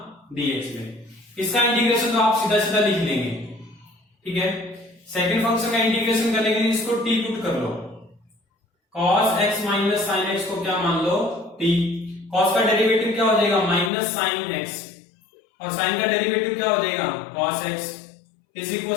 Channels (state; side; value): drops out; right; at 13.9 s